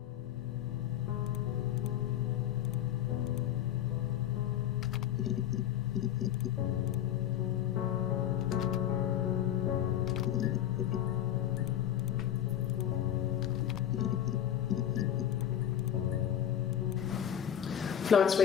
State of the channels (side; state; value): right; quieter; 10.6 dB